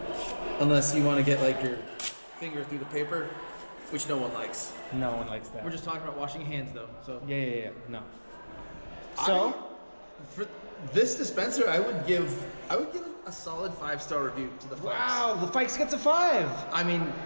unless you want to get like your finger through the paper, which no one likes. No one likes that. We're just talking about washing hands though. So Yeah. No. So for this dispenser, I would give a solid 5-star review to the Fikes. wow, the Fikes gets a 5. I mean,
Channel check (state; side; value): inverted; both; correlation -1.00